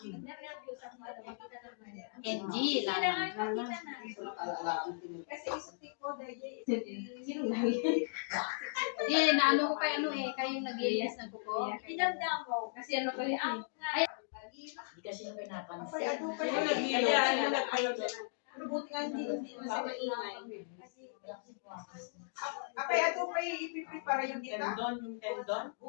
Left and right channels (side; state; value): right; silent; digital silence